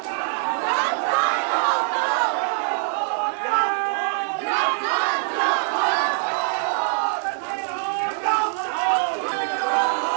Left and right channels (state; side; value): silent; left; digital silence